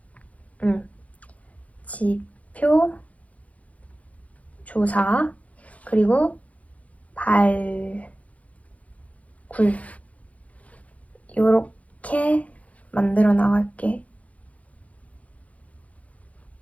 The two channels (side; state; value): right; late; 0.068 ms